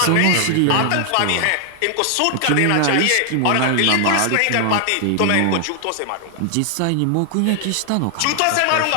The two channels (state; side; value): different; both; correlation 0.00